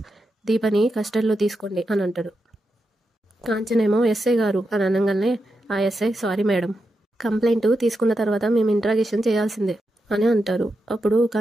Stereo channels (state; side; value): normal; both; correlation 0.87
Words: దీపని కస్టడీలో తీసుకోండి అని అంటాడు. కాంచనేమో ఎస్ఐ గారు అని అనగానే ఆ ఎస్ఐ సారీ మేడం, కంప్లైంట్ తీసుకున్న తర్వాత మేము ఇంట్రాగేషన్ చేయాల్సిందే అని అంటారు. అప్పుడు